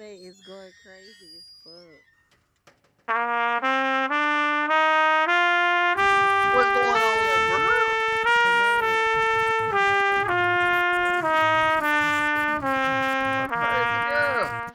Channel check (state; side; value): identical; both; correlation 1.00